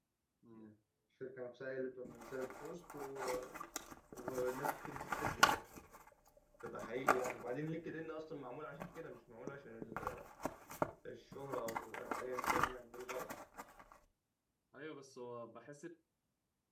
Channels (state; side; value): identical; both; correlation 1.00